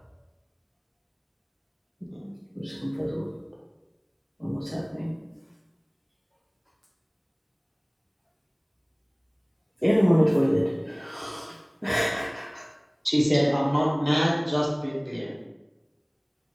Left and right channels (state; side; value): identical; both; correlation 1.00